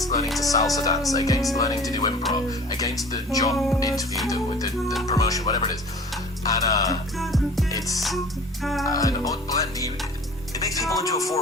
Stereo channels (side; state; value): both; normal; correlation 0.44